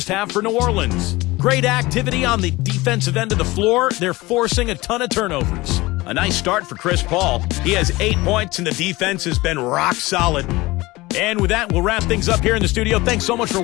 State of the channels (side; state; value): right; quieter; 20.6 dB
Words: half for New Orleans. Great activity on the defensive end of the floor. They're forcing a ton of turnovers. A nice start for Chris Paul. He has 8 points, and the defense has been rock solid. And with that, we'll wrap things up here in the studio. Thanks so much for